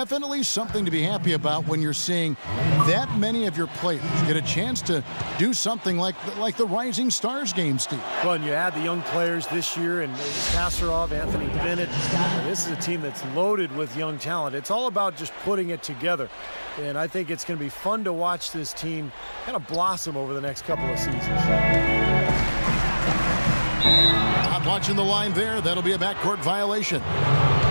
something to be happy about when you're seeing that many of your players get a chance to do something like the Rising Stars game, Steve. Well, and you add the young players this year, and Kasparov, Anthony Bennett. This is a team that's loaded with young talent. It's all about just putting it together. And I think it's going to be fun to watch this team kind of blossom over the next couple of seasons. Not watching the line there. That'll be a backcourt violation.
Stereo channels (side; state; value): both; inverted; correlation -1.00